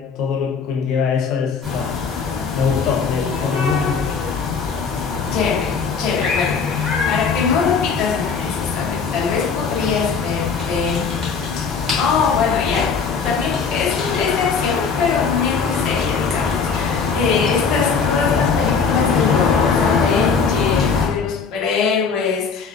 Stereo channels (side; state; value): right; quieter; 5.5 dB